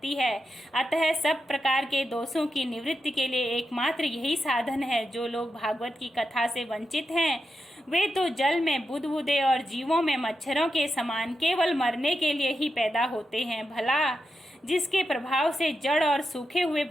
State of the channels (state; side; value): normal; both; correlation 0.88